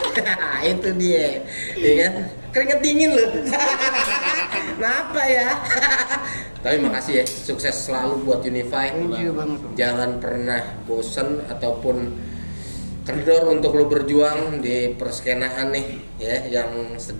Itu dia, ya kan? Keringet dingin loh. Kenapa ya? Tapi makasih ya, sukses selalu buat Unify. Thank you banget. Jangan pernah bosen ataupun kendor untuk lo berjuang di perskenaan nih, ya, yang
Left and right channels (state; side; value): inverted; both; correlation -1.00